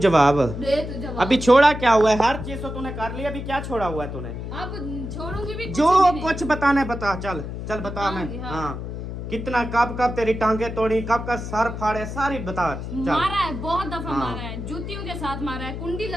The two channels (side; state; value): left; noise; hum, 7 dB below the sound